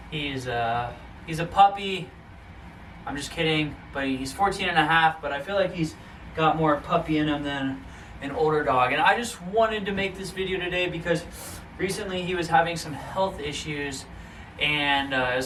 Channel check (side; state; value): both; identical; correlation 1.00